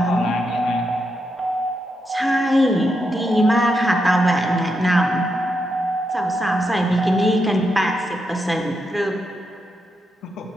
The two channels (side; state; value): both; normal; correlation 0.84